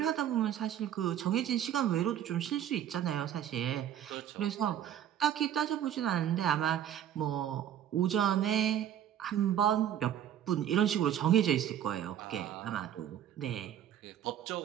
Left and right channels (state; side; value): quieter; left; 10.5 dB